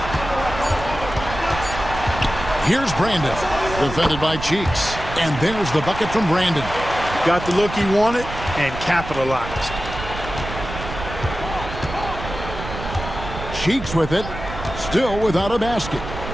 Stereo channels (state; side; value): noise; right; rumble, 9 dB below the sound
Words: Here's Brandon, defended by Cheeks. And there's the bucket from Brandon. Got the look he wanted and capitalized. Cheeks with it, still without a basket.